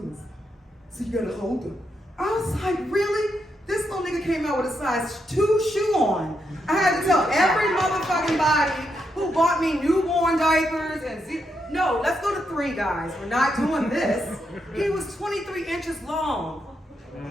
So you gotta hold him. I was like, really? This little nigga came out with a size 2 shoe on. I had to tell every motherfucking body who bought me newborn diapers and no, let's go to 3, guys. We're not doing this. He was 23 inches long.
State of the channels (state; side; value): normal; both; correlation 0.81